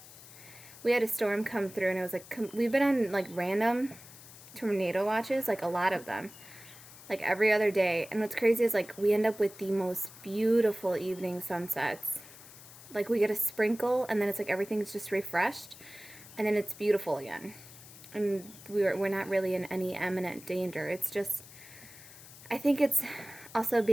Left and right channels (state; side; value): noise; left; hiss, 18 dB below the sound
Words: We had a storm come through, and it was like, we've been on like random tornado watches, like a lot of them, like every other day. And what's crazy is like we end up with the most beautiful evening sunsets. Like we get a sprinkle, and then it's like everything's just refreshed, and then it's beautiful again. And we're not really in any imminent danger. It's just, I think it's also